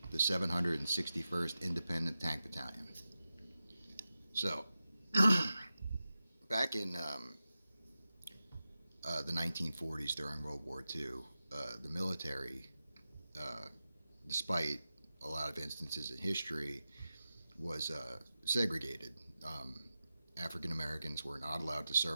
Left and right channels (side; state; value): both; inverted; correlation -0.92